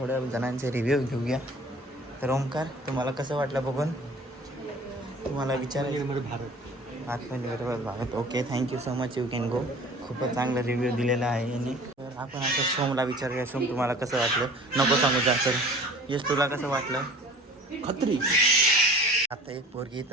जणांचे रिव्ह्यू घेऊया. तर ओमकार तुम्हाला कसं वाटलं बघून? तुम्हाला विचारायचं आत्मनिर्भर Bharat. Okay thank you so much. You can go. खूपच चांगला रिव्ह्यू दिलेला आहे यांनी. तर आपण असं सोमला विचारूया. सोम तुम्हाला कसं वाटलं? नको सांगू जा. तर यश तुला कसं वाटलं? खत्री. आता एक पोरगी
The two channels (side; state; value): both; normal; correlation 0.46